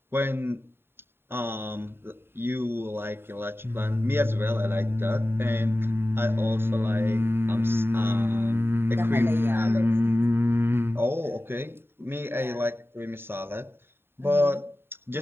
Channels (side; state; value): left; late; 0.11 ms